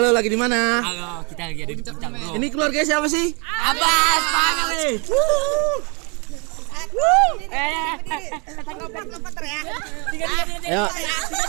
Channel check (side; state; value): left; quieter; 32.3 dB